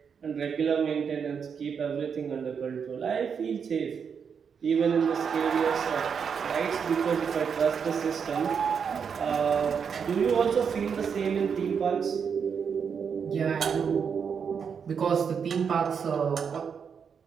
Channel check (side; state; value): left; quieter; 6.7 dB